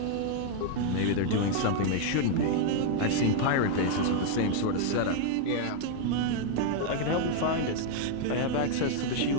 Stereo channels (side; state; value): both; different; correlation 0.00